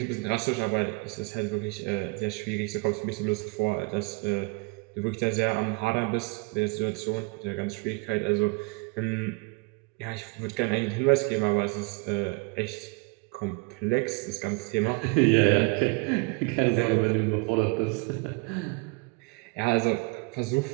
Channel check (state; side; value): quieter; left; 29.2 dB